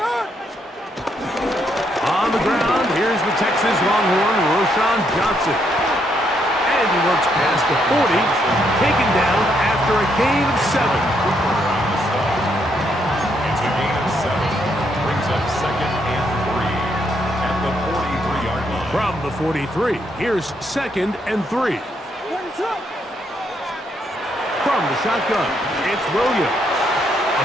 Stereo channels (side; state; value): both; normal; correlation 0.75